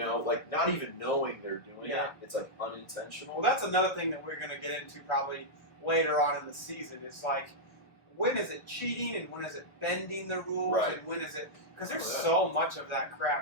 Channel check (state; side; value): late; right; 1.2 ms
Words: like not even knowing they're doing Yeah. it. It's like unintentional. Well, that's another thing that we're going to get into probably later on in the season is like, when is it cheating and when is it bending the rules Right. and when is it... Because there's Oh, yeah. so much of that